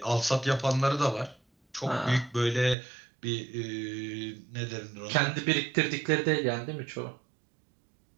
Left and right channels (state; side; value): drops out; left; at 2.8 s